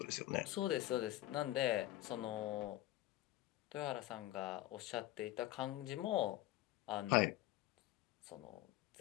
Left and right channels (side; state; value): right; quieter; 15.6 dB